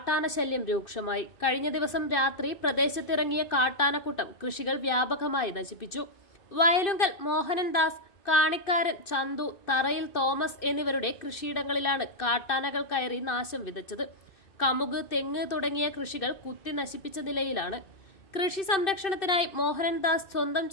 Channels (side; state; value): right; late; 2.5 ms